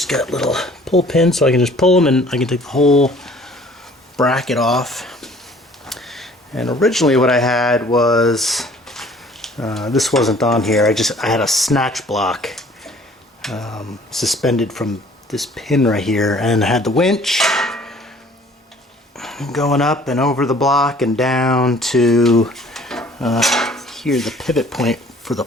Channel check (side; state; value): both; normal; correlation 0.53